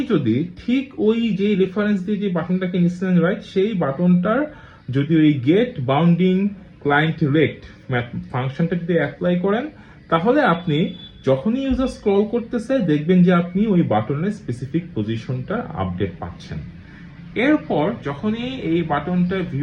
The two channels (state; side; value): identical; both; correlation 1.00